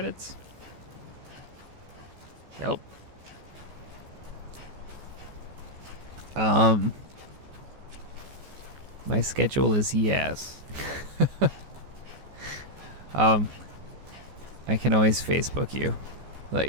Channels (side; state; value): left; late; 14 ms